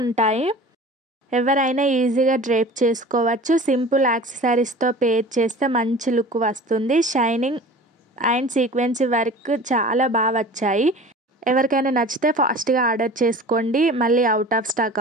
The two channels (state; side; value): normal; both; correlation 0.40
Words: ఉంటాయి. ఎవరైనా ఈజీగా డ్రేప్ చేసుకోవచ్చు. సింపుల్ యాక్సెసరీస్తో పేర్ చేస్తే మంచి లుక్ వస్తుంది. షైనింగ్ అండ్ సీక్వెన్సీ వర్క్ చాలా బాగా వచ్చాయి. ఎవరికైనా నచ్చితే ఫాస్ట్గా ఆర్డర్ చేసుకోండి, మళ్ళీ అవుట్ ఆఫ్ స్టాక్